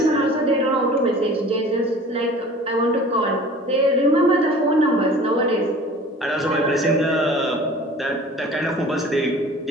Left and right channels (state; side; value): normal; both; correlation 0.44